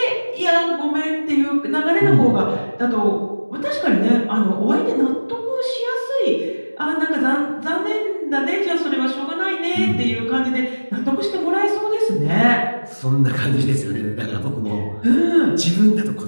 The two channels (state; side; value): inverted; both; correlation -1.00